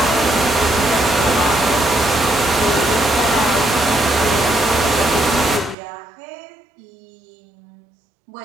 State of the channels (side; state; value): left; drops out; at 5.8 s